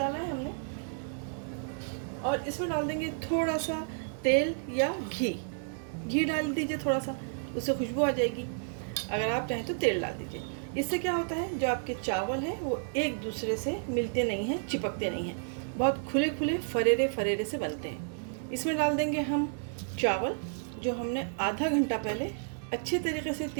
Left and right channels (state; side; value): silent; left; digital silence